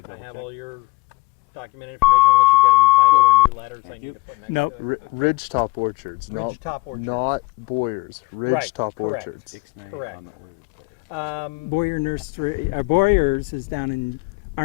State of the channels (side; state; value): right; quieter; 22.4 dB